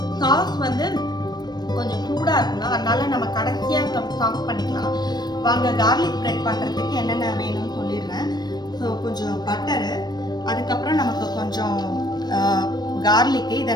சாஸ் வந்து கொஞ்சம் சூடாக இருக்கணும், அதனால நம்ம கடைசியாக சாஸ் பண்ணிக்கலாம். வாங்க கார்லிக் பிரெட் பண்ணுறதுக்கு என்னென்ன வேணும்னு சொல்லிடுறேன். ஸோ கொஞ்சம் பட்டரு, அதுக்கப்புறம் நமக்கு கொஞ்சம் கார்லிக்கு, இதை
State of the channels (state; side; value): late; right; 0.20 ms